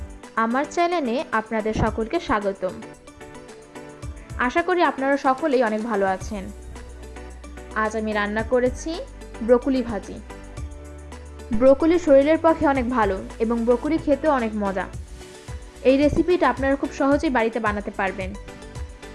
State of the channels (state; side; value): identical; both; correlation 1.00